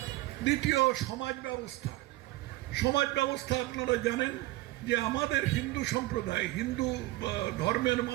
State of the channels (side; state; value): left; quieter; 18.6 dB